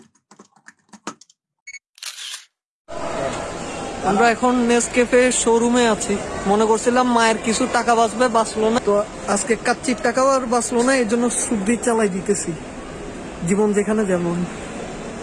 আমরা এখন নেসক্যাফে শোরুমে আছি। মনে করছিলাম মায়ের কিছু টাকা বাঁচবে, বাঁচলো না। তো আজকে কাচ্চির টাকাও আর বাঁচলো না, এই জন্য সুদ্দি চালাই দিতেছি, জীবন যেখানে যেমন।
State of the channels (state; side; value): identical; both; correlation 1.00